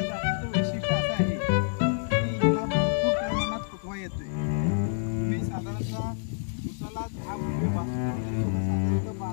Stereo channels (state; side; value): silent; right; 59 dB below the other